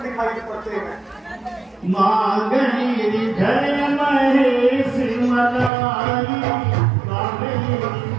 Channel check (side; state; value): left; drops out; at 5.7 s